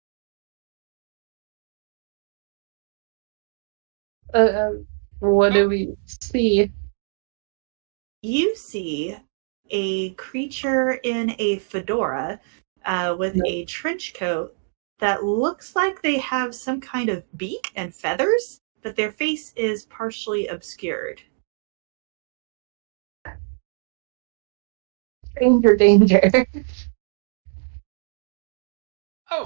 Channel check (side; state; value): left; silent; digital silence